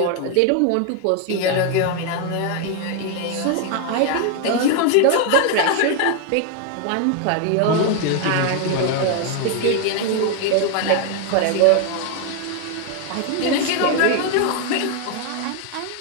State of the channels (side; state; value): both; different; correlation 0.01